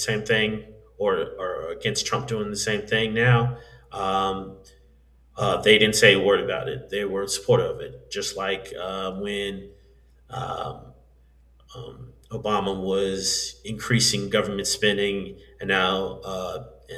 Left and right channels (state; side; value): identical; both; correlation 1.00